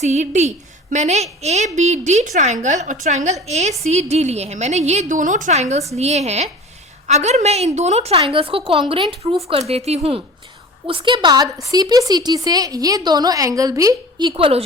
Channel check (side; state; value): both; normal; correlation 0.39